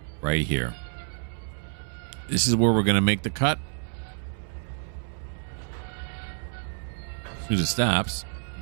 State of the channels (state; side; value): silent; left; 59 dB below the other